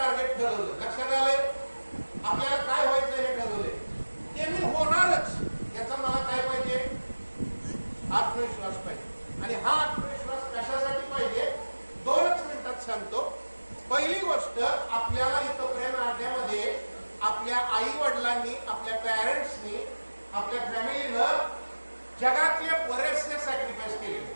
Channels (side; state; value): both; inverted; correlation -1.00